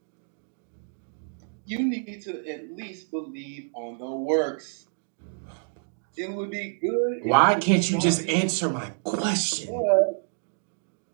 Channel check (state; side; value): silent; left; digital silence